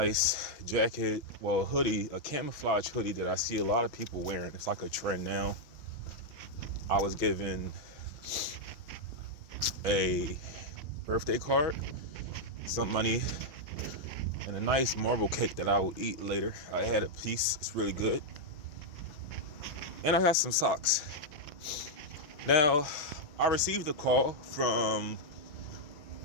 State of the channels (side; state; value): right; late; 6.2 ms